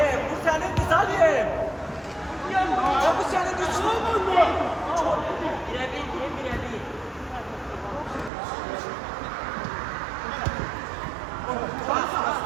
bu senin kız Ali. Ya bu senin düşmanın mı? Birebir.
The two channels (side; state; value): left; drops out; at 8.3 s